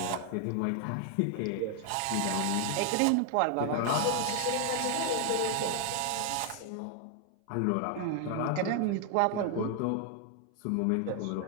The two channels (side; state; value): both; different; correlation 0.00